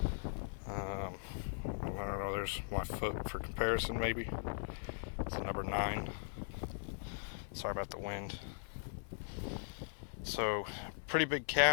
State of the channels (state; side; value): silent; right; 51 dB below the other